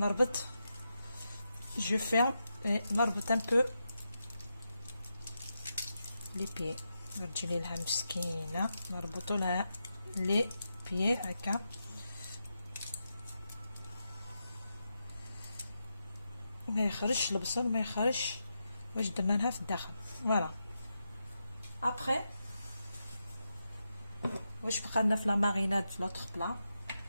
je ferme et نربط un peu les pieds. نرجلي لها مسكينة نربطو لها لي بيي هكا. ما يخرجش البصل، ما يخرجش واش درنا لها في الداخل. فوالا. ابخي واش بقى لنا في لا ماريناد في لوطخ بلا.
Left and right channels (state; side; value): inverted; both; correlation -0.86